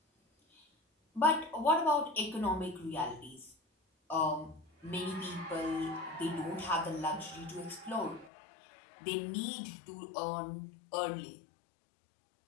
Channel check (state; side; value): drops out; right; at 8.3 s